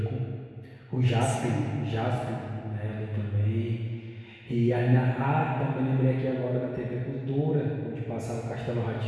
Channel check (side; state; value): both; identical; correlation 1.00